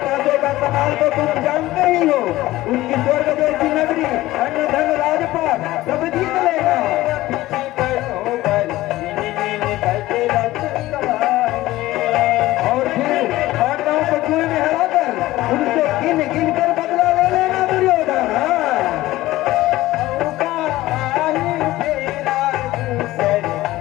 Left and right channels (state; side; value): quieter; right; 17.0 dB